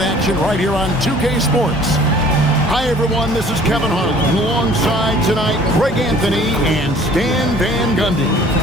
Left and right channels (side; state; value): both; normal; correlation 0.52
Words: right here on 2K Sports. Hi, everyone. This is Kevin Harlan. Alongside tonight, Greg Anthony and Stan Van Gundy.